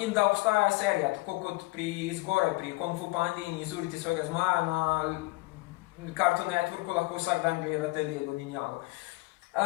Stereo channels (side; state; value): right; quieter; 23.5 dB